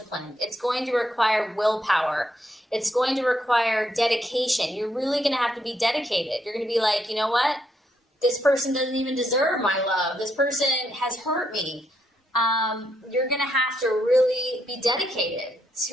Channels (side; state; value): both; normal; correlation 0.77